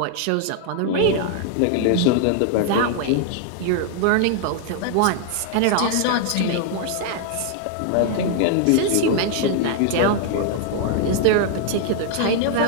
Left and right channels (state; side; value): different; both; correlation 0.00